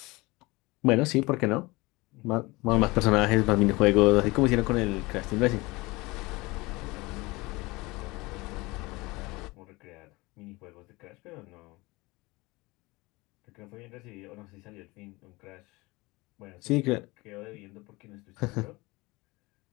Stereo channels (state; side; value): quieter; right; 22.8 dB